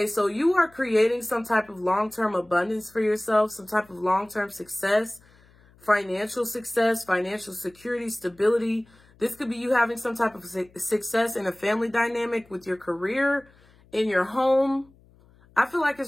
so you are creating some type of long-term abundance for yourself, some type of long-term success, financial security, stability. This could be you having some type of success in a family dynamic with your career, in your home. I feel like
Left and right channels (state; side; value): noise; left; hum, 29 dB below the sound